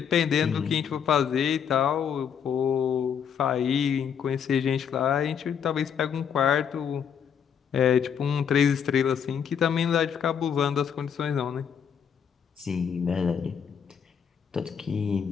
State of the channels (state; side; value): quieter; right; 7.7 dB